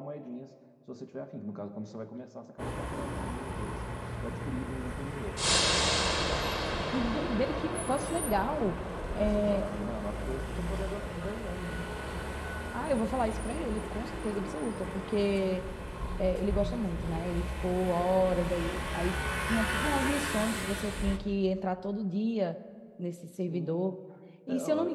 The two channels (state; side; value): identical; both; correlation 1.00